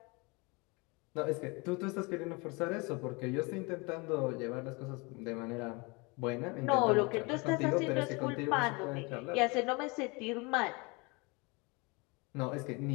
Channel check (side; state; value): right; quieter; 28.0 dB